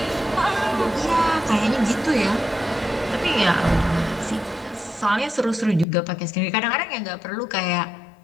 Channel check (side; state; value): right; drops out; at 5.9 s